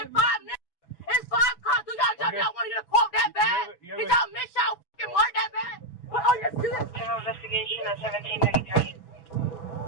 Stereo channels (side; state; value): right; late; 6.1 ms